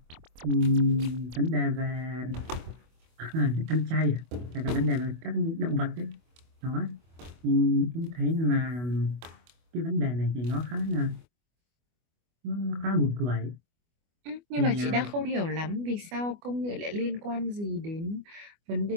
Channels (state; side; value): late; left; 24 ms